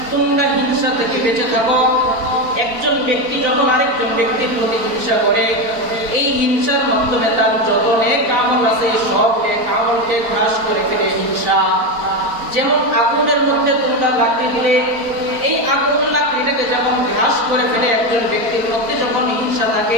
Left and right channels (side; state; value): left; late; 4.3 ms